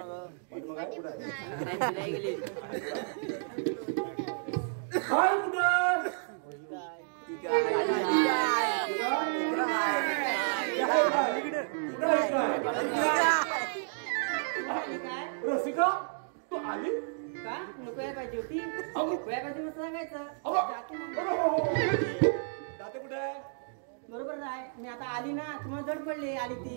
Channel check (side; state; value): left; silent; digital silence